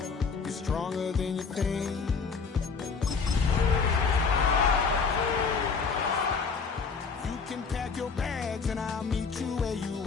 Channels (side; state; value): right; quieter; 5.2 dB